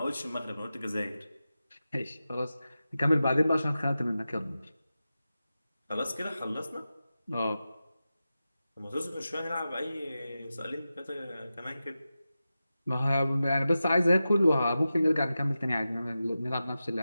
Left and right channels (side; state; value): both; inverted; correlation -0.93